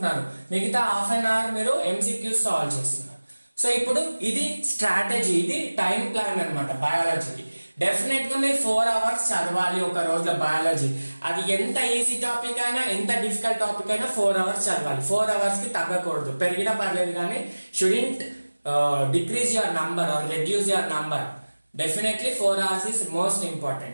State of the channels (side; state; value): both; inverted; correlation -1.00